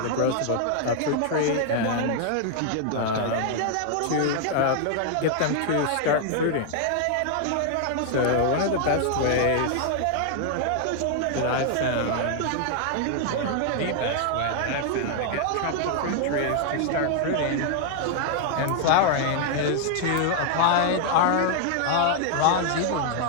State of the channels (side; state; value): both; different; correlation 0.00